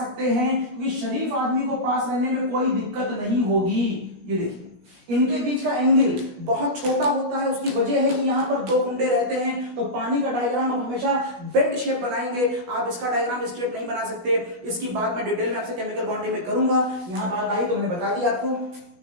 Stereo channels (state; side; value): late; left; 16 ms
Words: हैं, क्योंकि शरीफ आदमी को पास रहने में कोई दिक्कत नहीं होगी। ये देखिए इनके बीच का एंगल बहुत छोटा होता है, उसकी वजह है कि यहाँ पर दो गुंडे रहते हैं। तो पानी का डायग्राम आप हमेशा बेंट शेप बनाएंगे, आप इसका डायग्राम स्ट्रेट नहीं बना सकते। इसकी बात मैं डिटेल में आपसे केमिकल बॉन्डिंग में करूंगा। यहाँ बात आई तो मैंने बता दिया